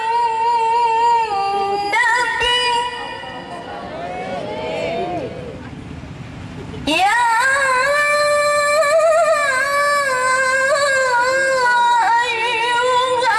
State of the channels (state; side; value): identical; both; correlation 1.00